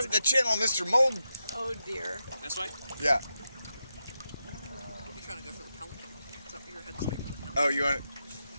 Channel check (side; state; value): both; inverted; correlation -0.87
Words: the channel, Mr. Mold. Oh dear. This way? Yeah. You're trying to go for the pelican. It's up your head straight for the pelican. Oh, you want it?